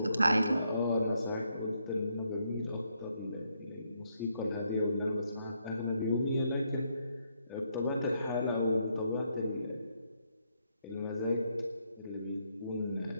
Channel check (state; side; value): inverted; both; correlation -0.76